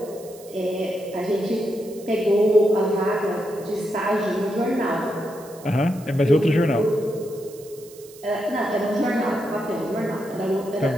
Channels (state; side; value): noise; right; hiss, 21 dB below the sound